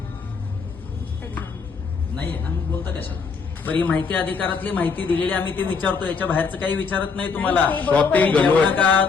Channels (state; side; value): quieter; right; 5.2 dB